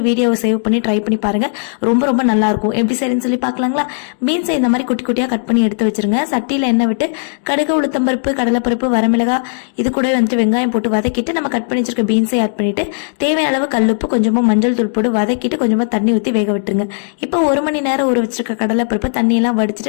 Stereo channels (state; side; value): silent; right; digital silence